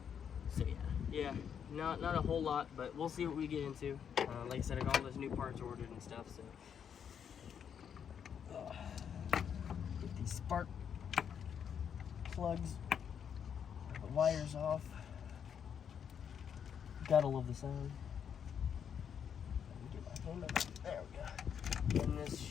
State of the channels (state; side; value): quieter; right; 7.9 dB